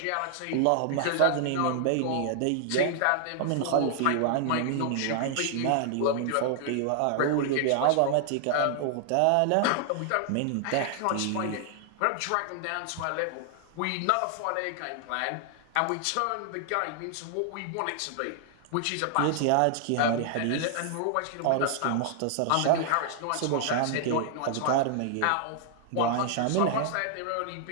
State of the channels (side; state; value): both; different; correlation 0.00